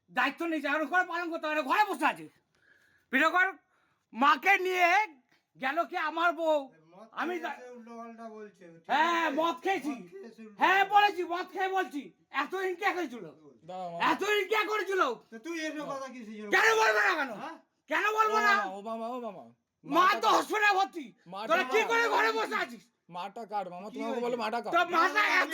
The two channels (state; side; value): identical; both; correlation 1.00